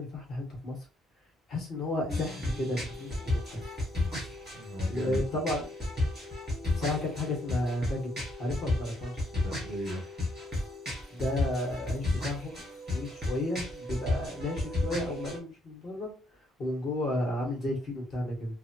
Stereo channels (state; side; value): normal; both; correlation 0.73